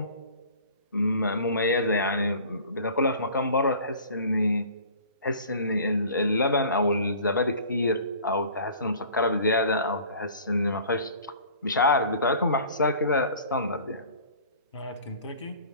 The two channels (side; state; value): both; inverted; correlation -0.46